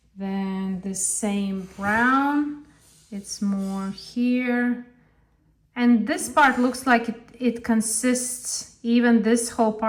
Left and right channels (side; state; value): both; identical; correlation 1.00